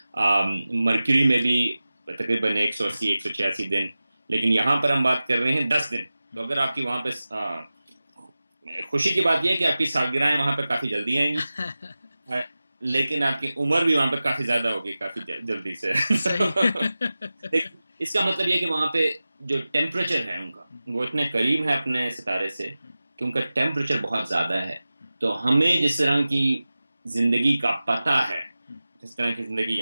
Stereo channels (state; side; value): inverted; both; correlation -0.96